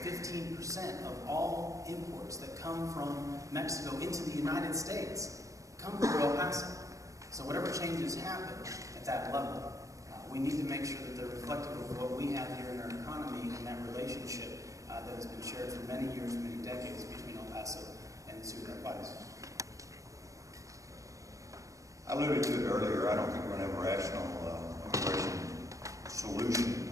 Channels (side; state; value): left; late; 0.16 ms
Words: of all imports that come from Mexico into the United States come through El Paso. So whatever changes happen at that level, we need to make sure that they're reflective of what we have here in our economy and that relationship that has been shared for many years, many decades between El Paso and Ciudad Juarez. I alluded to it earlier. I don't think we're going to have a rational immigration solution